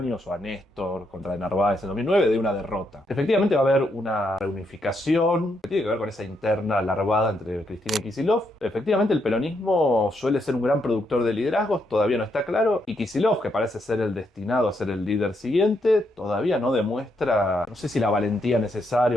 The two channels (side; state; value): both; normal; correlation 0.78